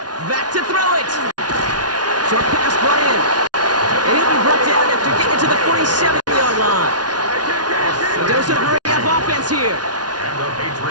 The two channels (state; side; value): late; left; 0.69 ms